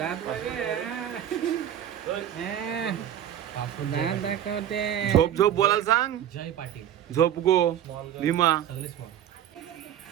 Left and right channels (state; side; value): quieter; left; 10.4 dB